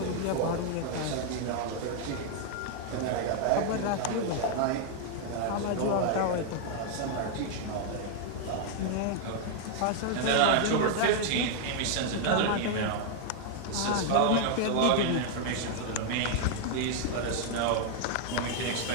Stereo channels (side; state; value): both; different; correlation 0.00